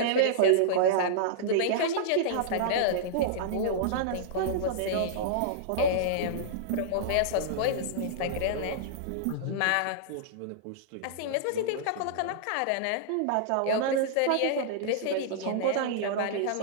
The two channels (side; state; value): both; different; correlation -0.02